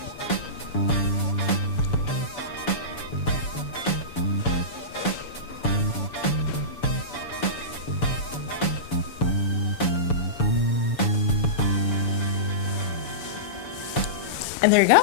And there you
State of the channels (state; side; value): late; right; 7.0 ms